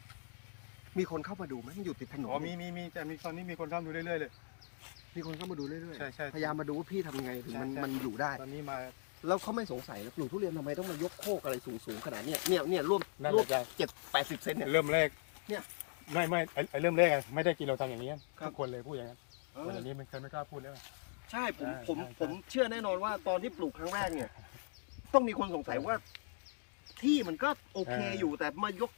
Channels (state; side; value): silent; right; digital silence